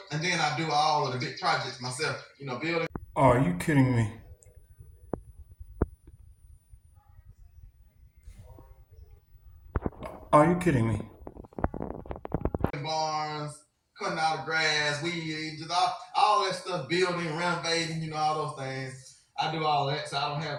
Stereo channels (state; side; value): identical; both; correlation 1.00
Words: and then I do all of the big projects myself, you know, building. Are you kidding me? Are you kidding me? Barns, cutting out the grass, weed, just all that stuff, building, renovating, you know, all those things. I do all that, so I don't